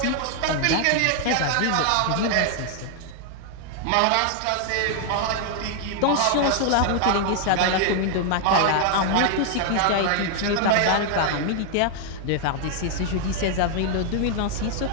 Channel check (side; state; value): both; different; correlation 0.00